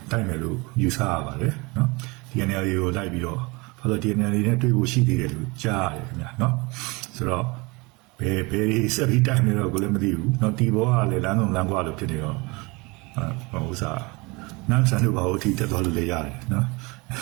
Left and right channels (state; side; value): quieter; left; 26.0 dB